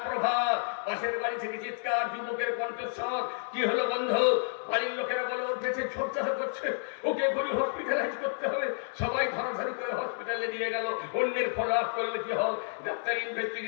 প্রভাত, পাশের বাড়ি থেকে চিৎকার, যুবকের কণ্ঠস্বর। কি হলো বন্ধু? বাড়ির লোকেরা বলে ওর পেটে ছোটচাটা করছে, ওকে এখনই হসপিটালাইজ করতে হবে। সবাই ধরাধরি করে হসপিটালে নিয়ে গেল। অন্যের ফলো আপ করলে কি হয়? ডাক্তার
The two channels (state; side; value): silent; right; digital silence